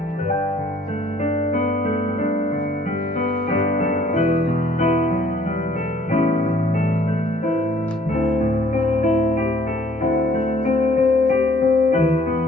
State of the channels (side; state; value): both; normal; correlation 0.59